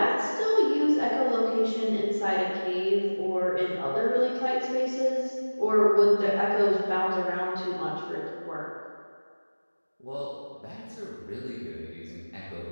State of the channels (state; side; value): inverted; both; correlation -1.00